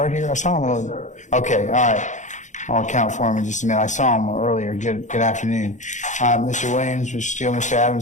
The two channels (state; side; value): late; right; 0.35 ms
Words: here? I saw him earlier. Okay, all right. I'll account for him in just a minute. I saw him earlier. Good afternoon. Mr. Williams, Mr. Steele, Mr.